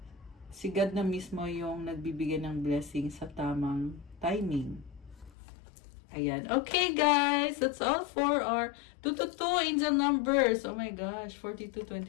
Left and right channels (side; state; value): right; drops out; at 5.3 s